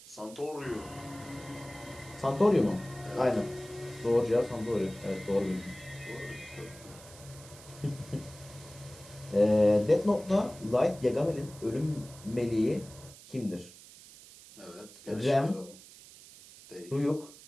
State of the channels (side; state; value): right; noise; hiss, 19 dB below the sound